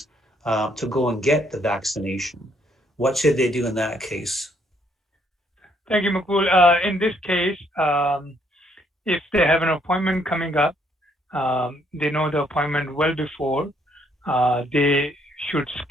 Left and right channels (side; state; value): both; normal; correlation 0.69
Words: to go and get the vaccination? What should they do in that case? Thank you, Makul. In this case, if they have an appointment coming up, they know the appointment well before, they should